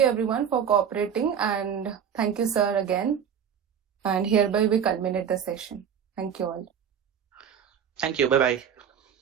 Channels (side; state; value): left; quieter; 8.1 dB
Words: everyone for cooperating, and thank you, sir, again. And hereby we culminate the session. Thank you all. Thank you. Bye bye.